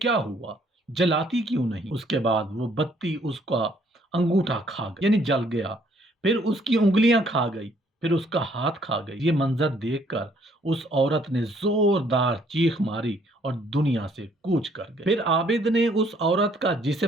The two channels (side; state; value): both; normal; correlation 0.64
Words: हुआ, जलाती क्यों नहीं? उसके बाद वो बत्ती उसका अंगूठा खा गई, यानी जल गया। फिर उसकी उंगलियां खा गई, फिर उसका हाथ खा गई। ये मंजर देखकर उस औरत ने जोरदार चीख मारी और दुनिया से कूच कर गई। फिर आबिद ने उस औरत का